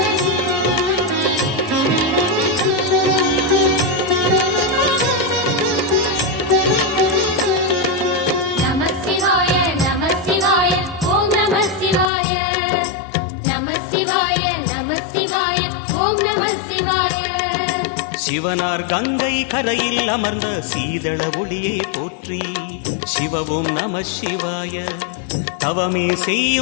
சிவனார் கங்கை கரையில் அமர்ந்த சீதள ஒளியே போற்றி. சிவ ஓம் நம சிவாய. தவமே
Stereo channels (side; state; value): right; drops out; at 12.1 s